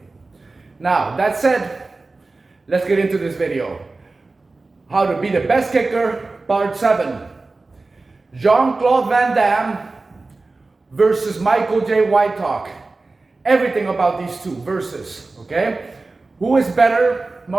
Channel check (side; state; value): left; quieter; 3.5 dB